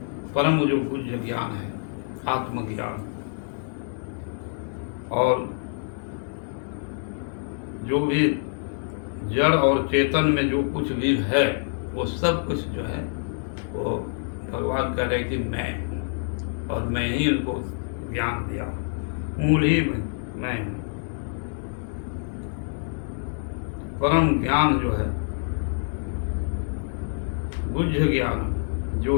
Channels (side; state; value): right; silent; digital silence